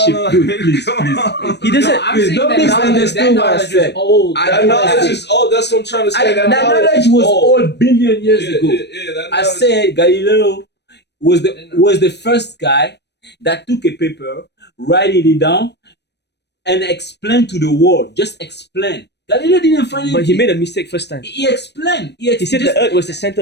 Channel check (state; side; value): late; right; 0.50 ms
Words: Dude, please. He doesn't. Don't misunderstand what I said. That knowledge is old. That's what I'm trying to say. That knowledge was old billion years ago. I said Galileo was the first guy that took a paper, write it down, and explain to the world. Just explain. Galileo didn't find it. But he made a mistake first time. He explained. He said the Earth was the center